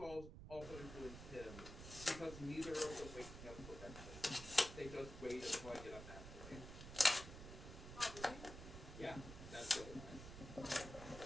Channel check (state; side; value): noise; right; rumble, 11 dB below the sound